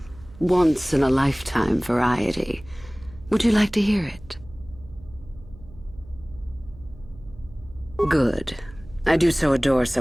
once-in-a-lifetime variety. Would you like to hear it? Good. I do so adore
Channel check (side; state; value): right; noise; hum, 20 dB below the sound